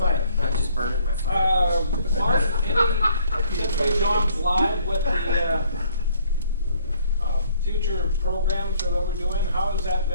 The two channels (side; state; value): both; inverted; correlation -0.62